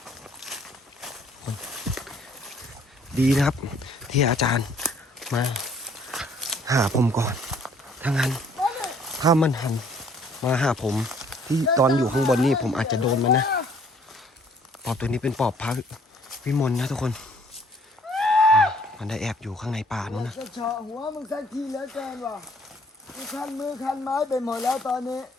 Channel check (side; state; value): both; normal; correlation 0.60